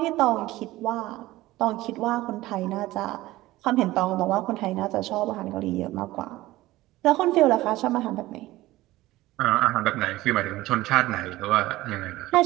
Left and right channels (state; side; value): quieter; left; 17.4 dB